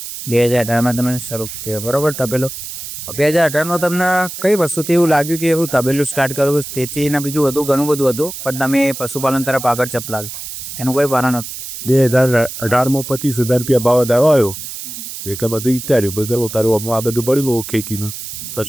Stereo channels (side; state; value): right; noise; hiss, 9 dB below the sound